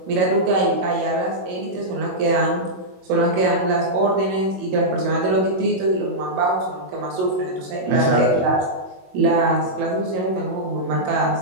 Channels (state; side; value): late; left; 21 ms